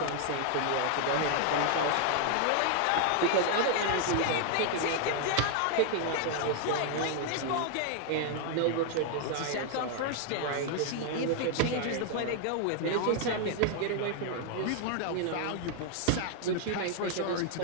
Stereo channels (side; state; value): both; different; correlation 0.00